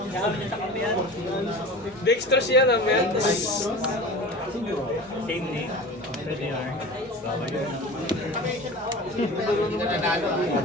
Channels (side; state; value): both; normal; correlation 0.35